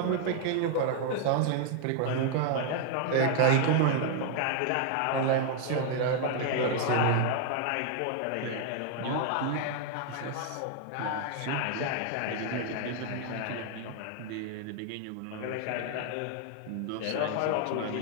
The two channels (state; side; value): different; both; correlation 0.00